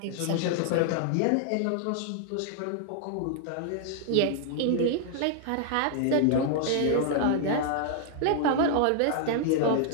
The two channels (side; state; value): both; different; correlation -0.01